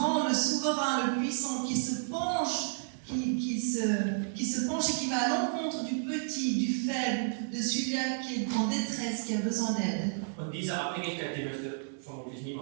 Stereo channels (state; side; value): silent; left; digital silence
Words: le souverain, le puissant qui se penche, qui se penche et qui va à l'encontre du petit, du faible, de celui-là qui est en détresse, qui a besoin d'aide. Und diese Abhängigkeit, die möchte vermutlich